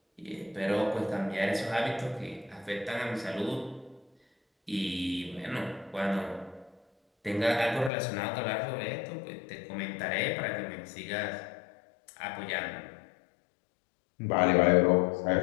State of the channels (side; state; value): right; drops out; at 7.9 s